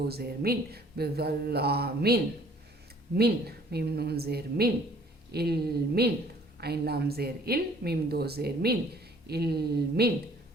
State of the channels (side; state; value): both; normal; correlation 0.56